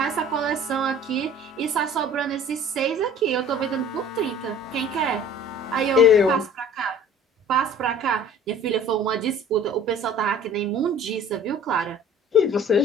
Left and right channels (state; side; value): normal; both; correlation 0.48